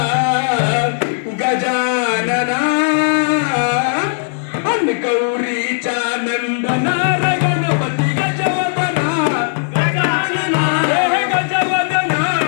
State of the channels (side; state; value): right; silent; digital silence